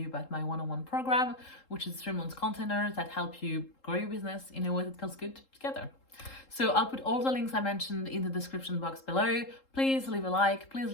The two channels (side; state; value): right; late; 3.7 ms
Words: about my one-on-one program, which is 3 months containers that help you grow your business in a way that feels good together. So I'll put all the links I mentioned in the description box below. Please leave a like, please